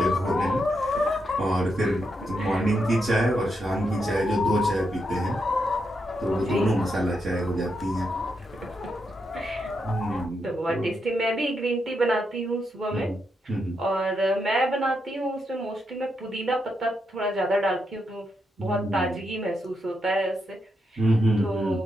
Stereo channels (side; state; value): both; normal; correlation 0.82